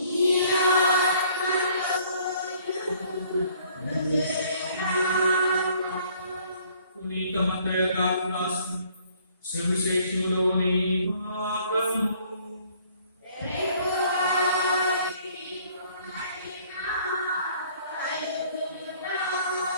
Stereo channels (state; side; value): inverted; both; correlation -0.60